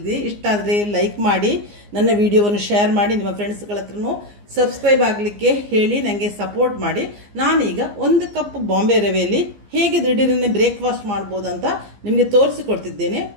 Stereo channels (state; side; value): late; left; 15 ms